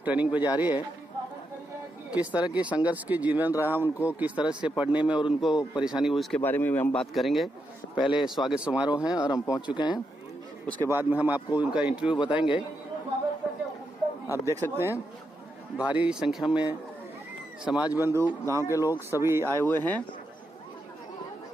ट्रेनिंग पे जा रही है। किस तरह की संघर्ष की जीवन रहा उनको, किस तरह से पढ़ने में और उनको परेशानी हुई, इसके बारे में भी हम बात करेंगे। पहले स्वागत समारोह है और हम पहुंच चुके हैं। उसके बाद में हम आपको उनका इंटरव्यू बताएंगे। आप देख सकते हैं भारी संख्या में समाज बंधु, गांव के लोग सभी आए हुए हैं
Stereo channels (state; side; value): normal; both; correlation 0.84